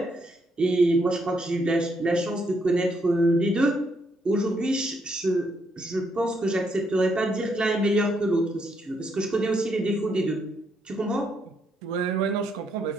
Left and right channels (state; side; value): normal; both; correlation 0.75